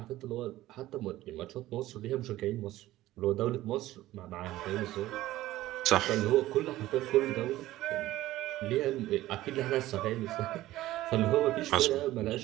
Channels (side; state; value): left; quieter; 15.8 dB